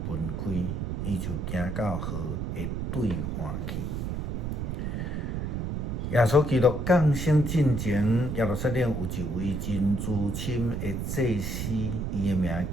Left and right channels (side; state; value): right; noise; rumble, 2 dB below the sound